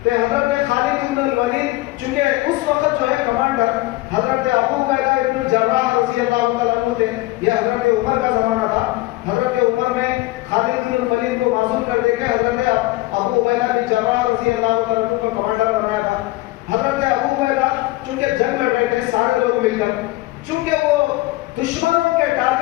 کہ حضرت خالد بن الولید چونکہ اس وقت جو ہے کمانڈر حضرت ابو عبیدہ ابن الجراح رضی اللہ تعالیٰ عنہ تھے، یہ حضرت عمر کا زمانہ تھا۔ حضرت عمر نے خالد بن الولید کو معزول کر دے کے حضرت ابو عبیدہ بن الجراح رضی اللہ تعالیٰ عنہ کو کمانڈر بنایا تھا۔ حضرت ابو عبیدہ چونکہ جنگ لڑ رہے تھے سارے لوگ مل کر، چونکہ وہ دشمنوں کے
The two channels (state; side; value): quieter; right; 19.3 dB